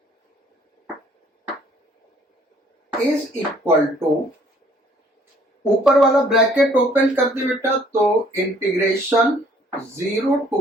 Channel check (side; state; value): both; normal; correlation 0.60